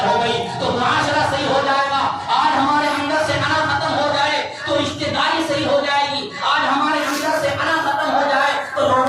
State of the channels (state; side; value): identical; both; correlation 1.00